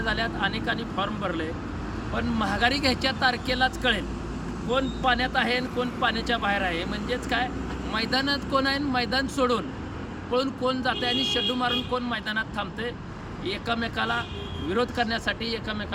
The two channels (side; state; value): both; identical; correlation 1.00